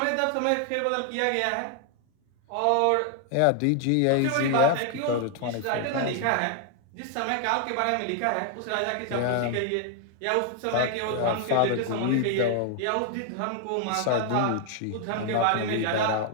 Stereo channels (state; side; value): different; both; correlation 0.00